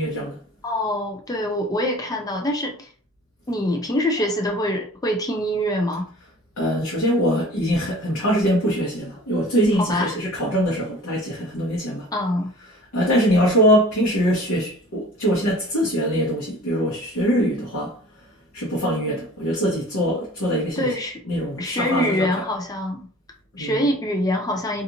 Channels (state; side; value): normal; both; correlation 0.45